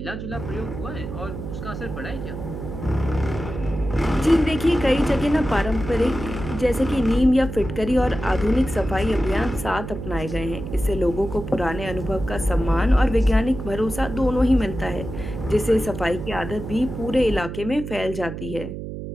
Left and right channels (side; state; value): right; noise; hum, 8 dB below the sound